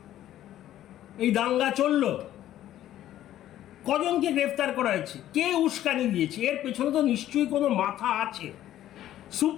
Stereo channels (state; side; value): quieter; right; 12.7 dB